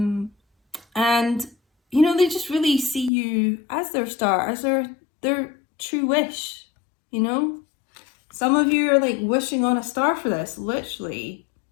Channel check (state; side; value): drops out; right; at 3.1 s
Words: And, you know, they just really see you as their star, as their true wish, you know? Some of you are like wishing on a star for this, literally.